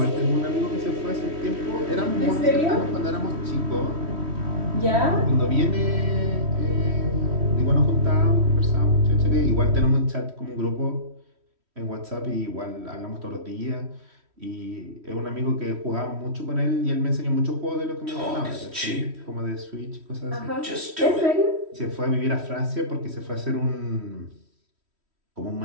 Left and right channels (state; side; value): late; left; 3.1 ms